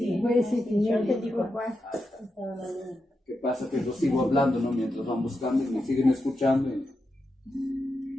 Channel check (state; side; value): normal; both; correlation 0.87